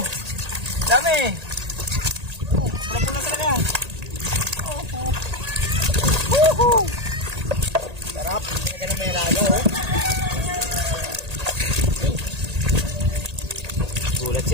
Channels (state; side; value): late; left; 1.8 ms